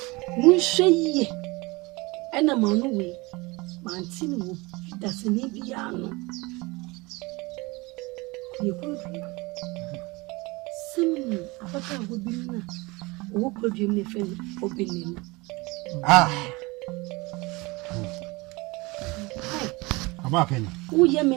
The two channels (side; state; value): left; quieter; 24.3 dB